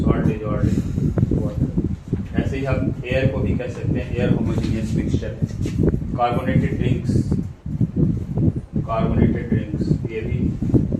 salt dissolved in water. ऐसे ही हम एयर को भी कह सकते हैं, एयर होमोजीनियस मिक्सचर है। कार्बोनेटेड ड्रिंक्स ये भी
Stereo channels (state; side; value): identical; both; correlation 1.00